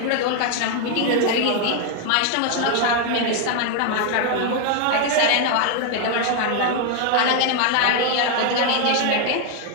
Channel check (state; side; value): different; both; correlation 0.00